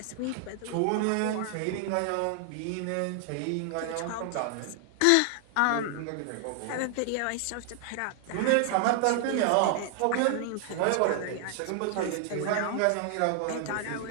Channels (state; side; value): different; both; correlation 0.00